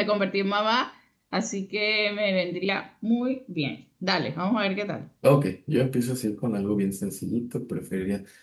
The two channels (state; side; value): identical; both; correlation 1.00